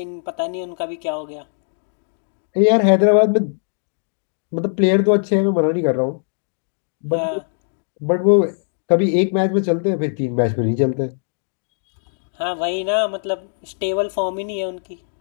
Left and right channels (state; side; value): silent; right; digital silence